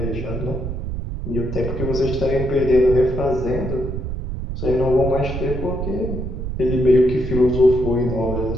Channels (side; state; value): right; noise; rumble, 5 dB below the sound